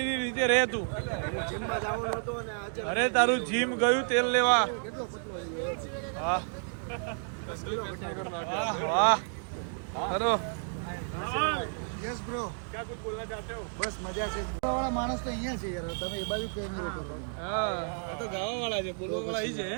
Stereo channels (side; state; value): left; silent; 57 dB below the other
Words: રીતે રહે તું. અરે તારું જીમ ગયું તેલ લેવા. વાહ વાહ વાહ. ચલો યસ બ્રો. ક્યાં કુછ બોલના ચાહતે હો? બસ મજા છે. વાળા માણસ તો અહીંયા છે યાર, તમે એ બાજુ કેમેરો કરો. હા આ તો ગાવા વાળા છે, બોલવા વાળા અહીં છે.